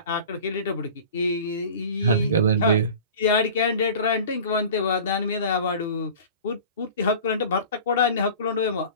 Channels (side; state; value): both; inverted; correlation -0.40